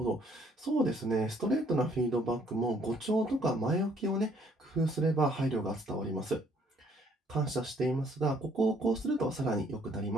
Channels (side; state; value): both; normal; correlation 0.64